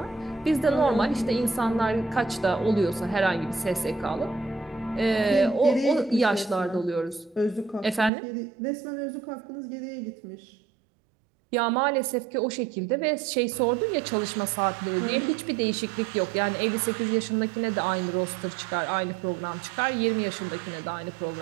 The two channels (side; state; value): left; drops out; at 8.1 s